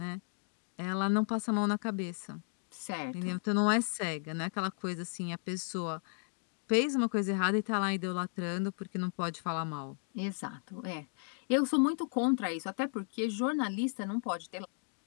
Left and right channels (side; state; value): right; silent; 55 dB below the other